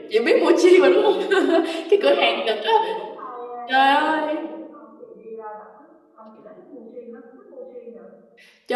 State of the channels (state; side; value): identical; both; correlation 1.00